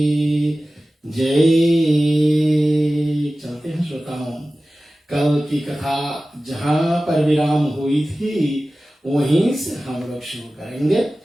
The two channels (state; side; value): normal; both; correlation 0.96